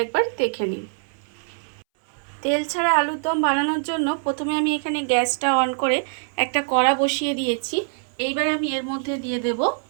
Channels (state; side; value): silent; left; 63 dB below the other